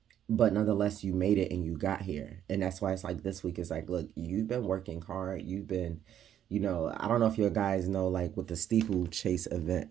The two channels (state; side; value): quieter; left; 10.3 dB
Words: But nonetheless, you made it and you got here. And that's why it's like this week is like, look, you've been working hard. You've been, you know, I don't know if you guys know like what the steeplechase event